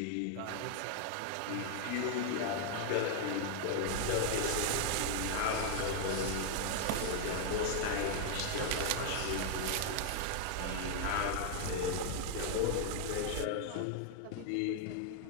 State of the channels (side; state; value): both; different; correlation 0.00